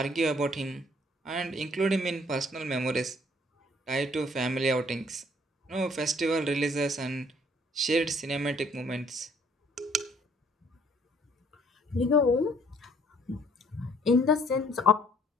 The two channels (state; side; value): normal; both; correlation 0.61